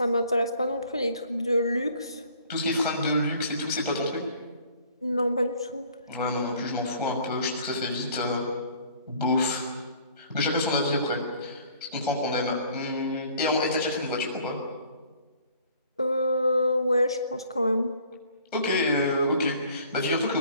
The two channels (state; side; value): inverted; both; correlation -0.55